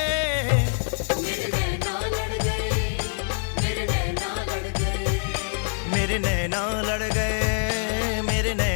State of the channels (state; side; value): silent; right; digital silence